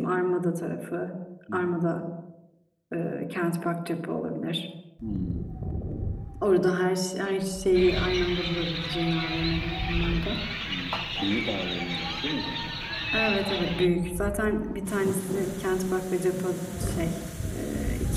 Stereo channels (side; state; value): both; identical; correlation 1.00